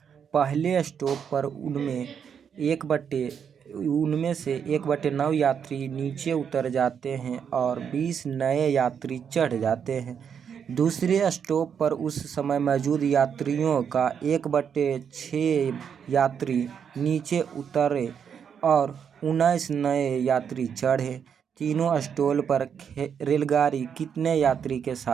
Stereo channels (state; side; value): quieter; left; 7.5 dB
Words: पहले स्टॉप पर उनमें से 1/9 यात्री नीचे उतर जाते हैं और 20 नए यात्री चढ़ जाते हैं। दूसरे स्टॉप पर उस समय मौजूद यात्रियों का 1/6 यात्री नीचे उतरे और 19 नए यात्री चढ़े। तीनों स्टॉल पर रेलगाड़ी कितने यात्री के